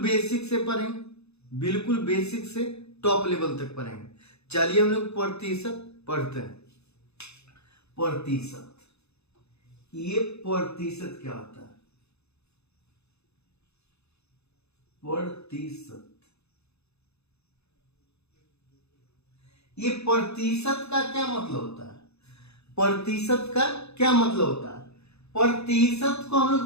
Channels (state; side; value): late; right; 0.80 ms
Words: बेसिक से पढ़ेंगे, बिल्कुल बेसिक से टॉप लेवल तक पढ़ेंगे। चलिए हम लोग प्रतिशत पढ़ते हैं। प्रतिशत, ये प्रतिशत क्या होता है? प्रतिशत, ये प्रतिशत का क्या मतलब होता है? प्रतिशत का क्या मतलब होता है? प्रतिशत को हम